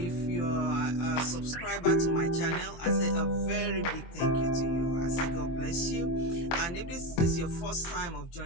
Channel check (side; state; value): right; late; 24 ms